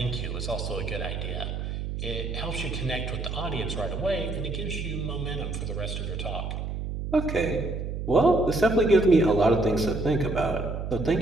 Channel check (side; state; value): right; noise; hum, 4 dB below the sound